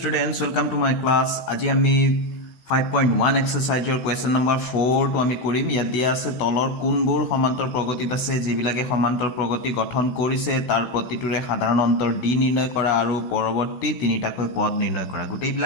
welcome to my class. আজি আমি 5.1 exercise question number 4 to আমি কৰিম। ইয়াত দিয়া আছে তলৰ কোনবোৰ সমান্তৰ প্ৰগতিত আছে যিবিলাকে সমান্তৰ প্ৰগতি গঠন কৰিছে তাৰ প্ৰতিটোৰে সাধাৰণ অন্তৰ d নিৰ্ণয় কৰা আৰু পৰৱৰ্তী তিনিটাকৈ পদ নিৰ্ণয় কৰা।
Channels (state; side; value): late; right; 16 ms